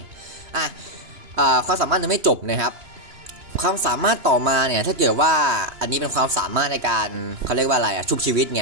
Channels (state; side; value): late; left; 2.9 ms